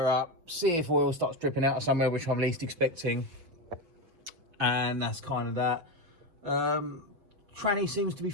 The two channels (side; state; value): left; late; 6.1 ms